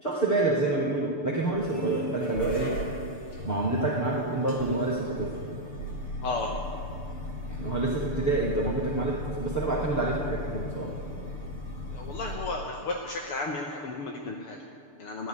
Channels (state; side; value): late; right; 6.8 ms